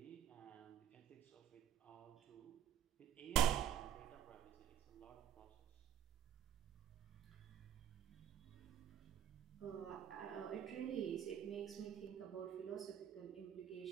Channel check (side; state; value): left; quieter; 9.9 dB